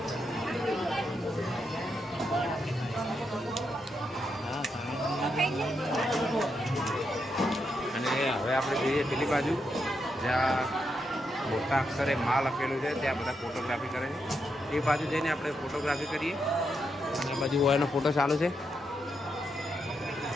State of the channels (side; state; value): both; normal; correlation 0.82